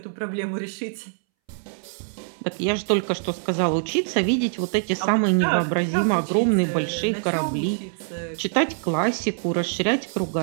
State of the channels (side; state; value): left; silent; 62 dB below the other